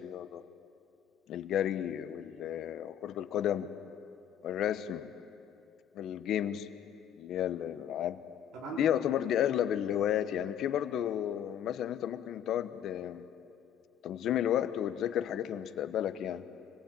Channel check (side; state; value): right; quieter; 9.9 dB